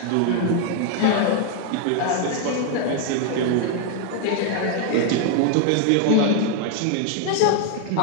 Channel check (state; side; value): different; both; correlation 0.00